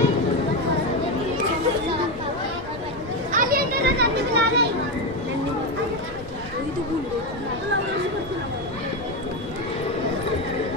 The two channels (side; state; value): both; normal; correlation 0.11